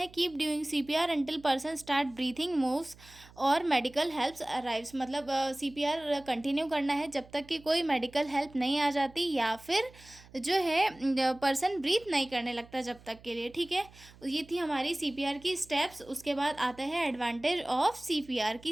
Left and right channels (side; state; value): right; noise; hum, 23 dB below the sound